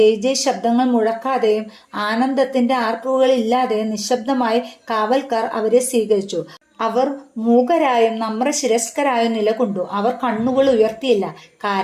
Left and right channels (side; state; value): both; identical; correlation 1.00